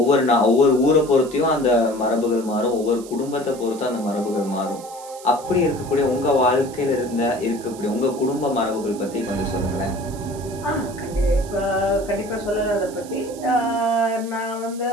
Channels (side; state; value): right; noise; hiss, 18 dB below the sound